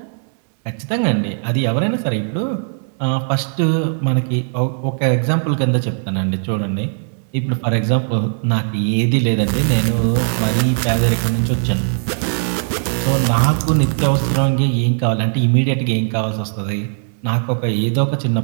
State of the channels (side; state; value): left; silent; digital silence